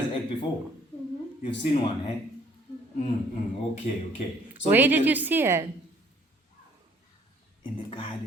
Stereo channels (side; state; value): both; normal; correlation 0.60